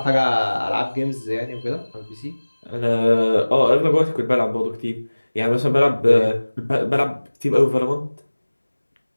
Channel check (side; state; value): both; inverted; correlation -1.00